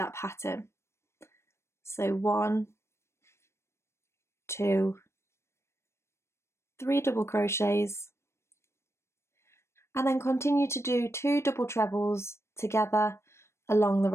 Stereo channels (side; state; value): right; late; 0.13 ms